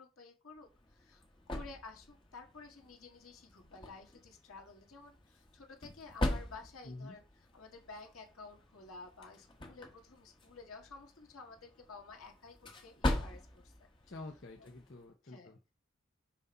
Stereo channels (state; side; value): normal; both; correlation 0.80